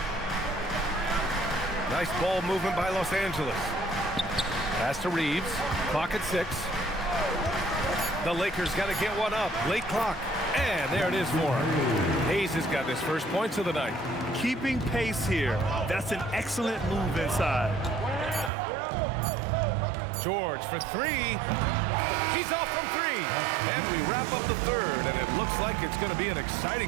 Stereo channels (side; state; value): left; drops out; at 18.5 s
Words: Nice ball movement by Los Angeles. Pass to Reeves. Clock at 6. The Lakers got to get one up. Late clock. And there it is for him. Hayes has got his first points of the night. Keeping pace here. That's an excellent move inside. George for three. He's off from three. And we wrap up the third, and it looks like it's going to be an